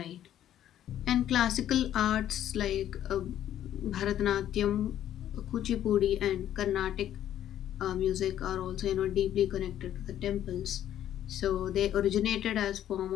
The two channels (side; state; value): right; quieter; 11.3 dB